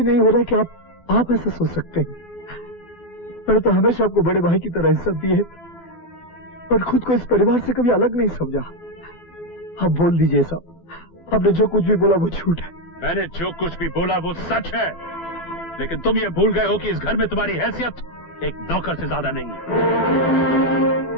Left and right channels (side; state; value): right; late; 12 ms